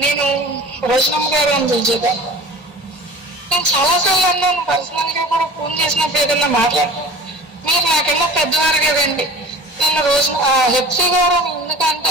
నేను రోజనమ్మ గారు అని పిలిచేదాన్ని. నేను చాలాసార్లు అన్నాను, పర్సనల్ గా కూడా ఫోన్ చేసినప్పుడు ఏదన్నా మాట్లాడుతాను, మీరు నాకన్నా పెద్దవారు కదండి, నన్ను రోజు హెచ్సి గారు అని ఎందుకు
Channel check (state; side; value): normal; both; correlation 0.39